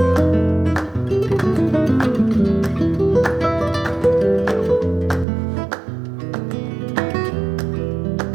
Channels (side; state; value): left; drops out; at 5.2 s